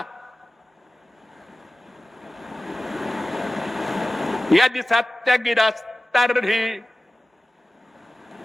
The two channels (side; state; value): both; normal; correlation 0.97